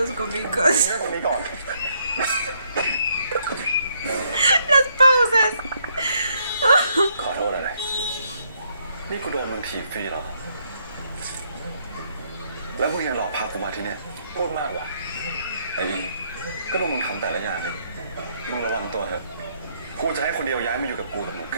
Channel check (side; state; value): both; inverted; correlation -0.72